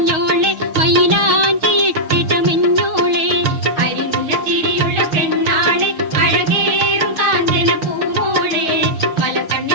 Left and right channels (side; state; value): left; late; 6.5 ms